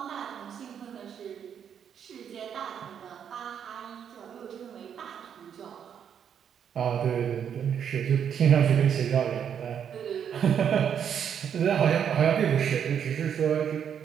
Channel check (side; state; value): left; quieter; 8.3 dB